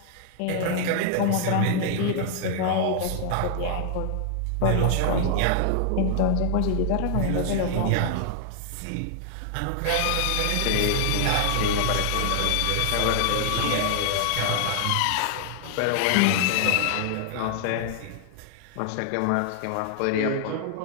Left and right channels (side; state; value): both; different; correlation 0.00